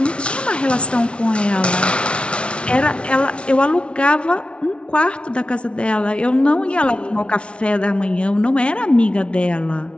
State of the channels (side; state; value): right; late; 0.059 ms